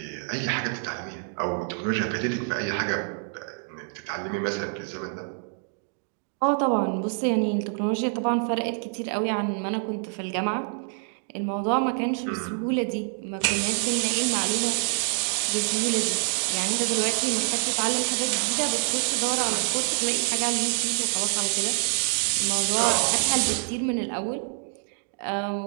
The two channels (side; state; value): left; silent; 56 dB below the other